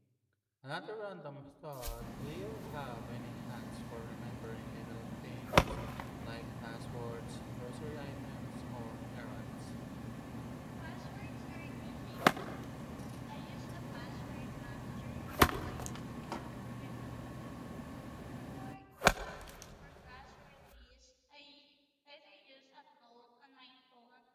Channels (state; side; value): identical; both; correlation 1.00